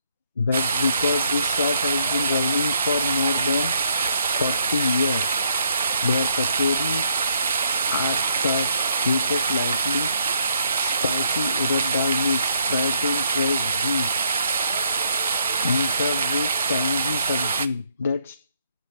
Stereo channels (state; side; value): inverted; both; correlation -0.71